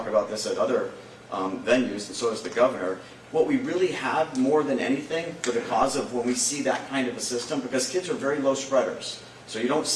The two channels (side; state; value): both; identical; correlation 1.00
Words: about this at other venues, and so does the governor. What we really have more than anything for the cause of when we see that kind of a system, because kids are very low spreaders. So you don't